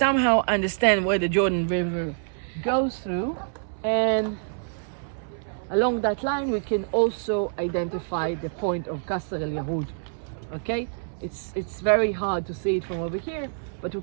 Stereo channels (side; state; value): left; silent; 61 dB below the other